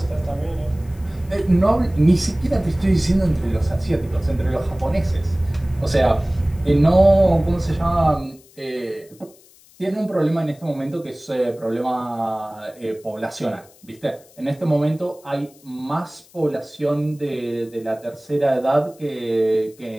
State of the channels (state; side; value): noise; left; hiss, 27 dB below the sound